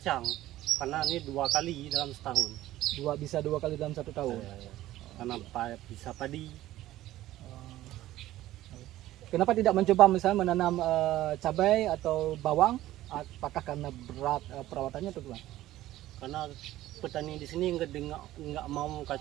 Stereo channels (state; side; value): quieter; left; 15.0 dB